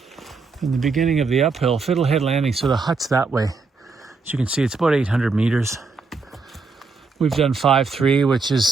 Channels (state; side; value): quieter; left; 4.3 dB